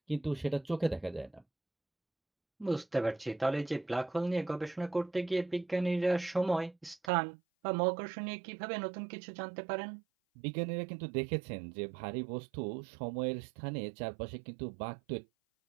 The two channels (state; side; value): drops out; left; at 7.1 s